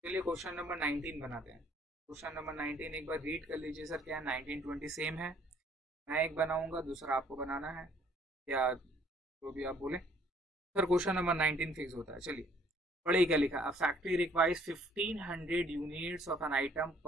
चलिए क्वेश्चन नंबर 19 बनाते हैं। क्वेश्चन नंबर 19 एक बार रीड कर लीजिए सर, क्या 19 20 सेम है। मैं एक बनाऊंगा, दूसरा आपको बनाना है, या जो भी आप बोले। सर क्वेश्चन नंबर 19 फिक्स होता है। चलिए पढ़िए क्या लिखा, a factory requires 1500 units of an item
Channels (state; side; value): normal; both; correlation 0.61